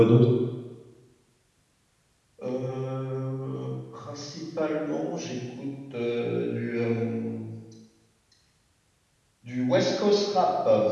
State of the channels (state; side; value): identical; both; correlation 1.00